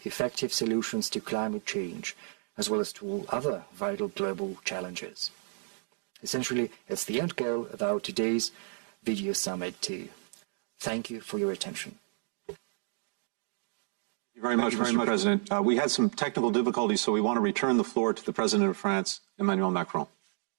effective solutions to climate change, as well as to all other vital global challenges. Essentially, it's the end goal of our today's video summit too. Thank you for your attention. Thank you very much, Mr. President. We had some technical difficulties, so we want to return the floor to the President of France, Emmanuel Macron.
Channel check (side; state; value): left; silent; 57 dB below the other